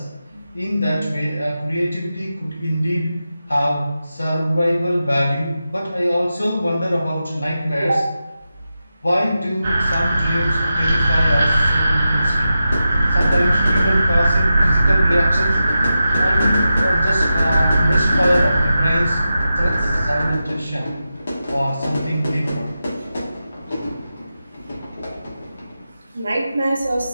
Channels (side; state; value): both; inverted; correlation -0.90